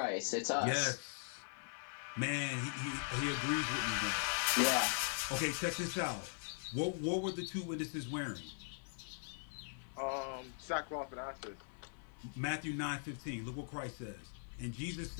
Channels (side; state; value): right; silent; 51 dB below the other